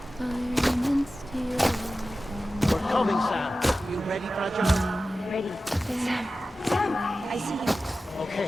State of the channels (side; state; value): both; normal; correlation 0.94